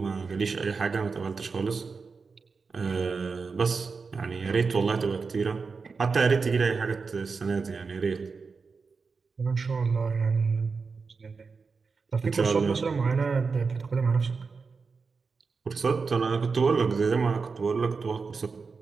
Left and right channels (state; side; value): quieter; left; 4.8 dB